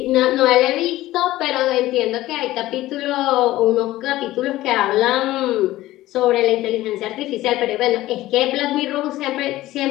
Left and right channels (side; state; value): right; quieter; 16.2 dB